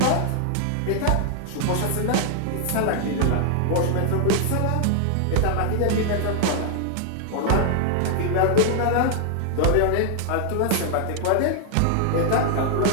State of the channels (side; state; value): both; different; correlation 0.00